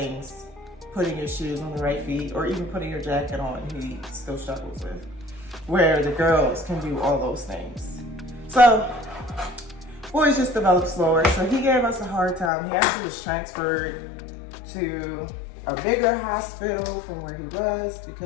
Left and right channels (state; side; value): drops out; right; at 12.5 s